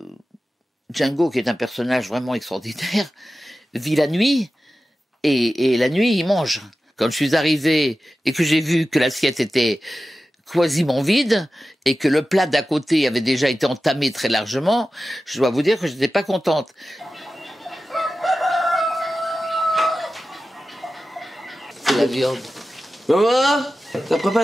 Django, qui est un personnage vraiment extraordinaire, vit la nuit, et la nuit, il mange. Quand je suis arrivé et que j'ai vu que l'assiette était quasiment vide et que le plat d'à côté avait déjà été entamé très largement, je dois vous dire que je n'étais pas contente. C'est la viande. Maman, t'as préparé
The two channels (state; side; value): normal; both; correlation 0.94